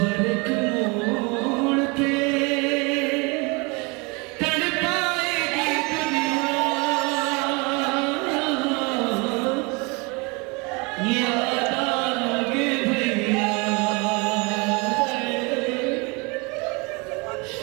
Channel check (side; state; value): left; quieter; 29.0 dB